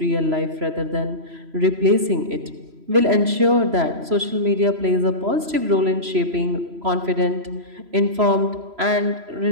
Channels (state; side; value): late; left; 3.0 ms